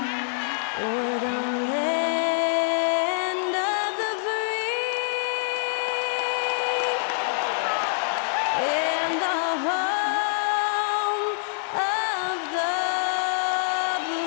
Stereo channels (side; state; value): right; silent; 61 dB below the other